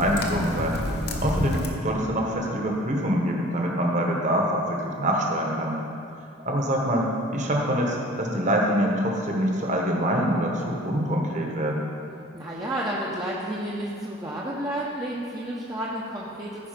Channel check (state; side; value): normal; both; correlation 0.48